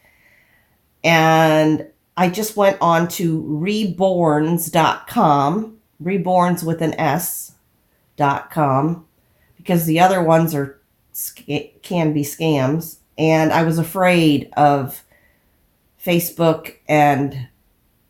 And I just went on to reborns.com, reborns with an S.com, because the other ones can be scams. And I was afraid of Facebook and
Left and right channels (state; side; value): identical; both; correlation 1.00